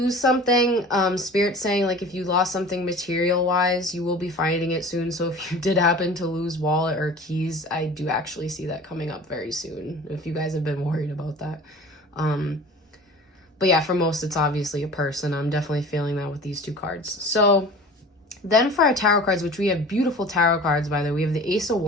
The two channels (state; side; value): normal; both; correlation 0.41